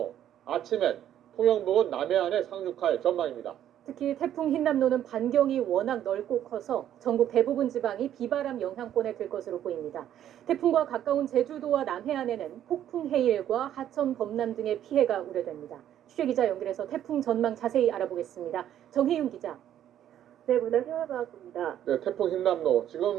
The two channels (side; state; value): left; quieter; 11.0 dB